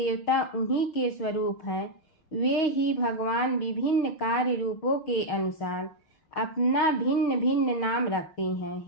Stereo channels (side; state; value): right; late; 6.4 ms